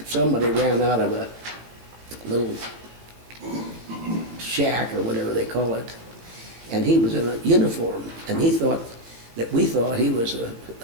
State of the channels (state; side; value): late; left; 17 ms